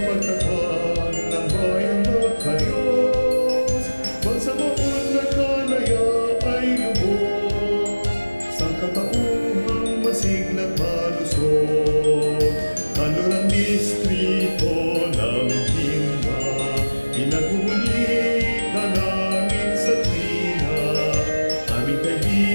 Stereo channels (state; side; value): inverted; both; correlation -1.00